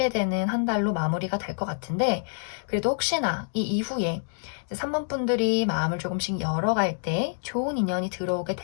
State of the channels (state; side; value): silent; right; digital silence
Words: 되는 한 달로 마무리가 될 것 같은데, 그래도 혹시나 이 이후에 3번 분들이 마음을 조금씩 열어갈 때 좋은 인연이 들어오게